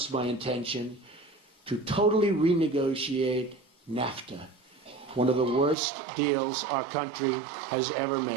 my intention to totally renegotiate NAFTA, one of the worst deals our country has ever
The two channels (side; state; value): left; drops out; at 5.8 s